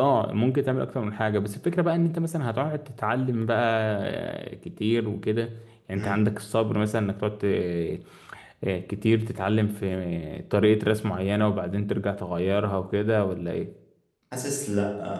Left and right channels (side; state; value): both; identical; correlation 1.00